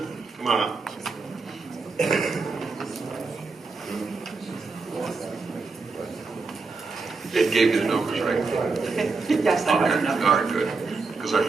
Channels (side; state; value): left; quieter; 4.2 dB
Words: come on up. It gave you the numbers, right? Yes, I have enough. All right, good, because I